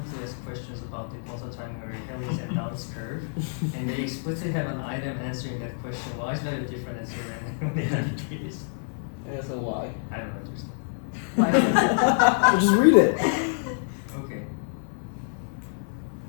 Asked Questions about the Pulsar Timing Array Helix and Downs Curve. And they explicitly have an item answering that question. Why is that a different answer than the indicators? Yeah, so why? I don't understand. Why? Just read it. Okay.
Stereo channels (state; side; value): silent; right; 60 dB below the other